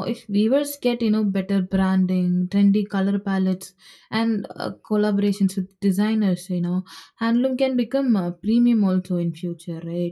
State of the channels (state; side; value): identical; both; correlation 1.00